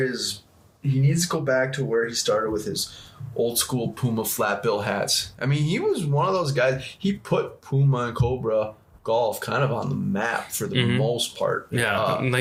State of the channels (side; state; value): both; identical; correlation 1.00